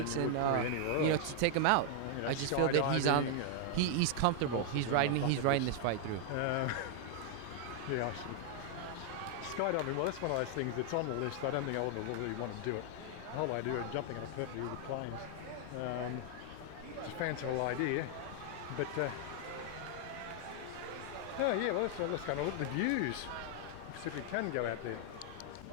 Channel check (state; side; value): different; both; correlation 0.00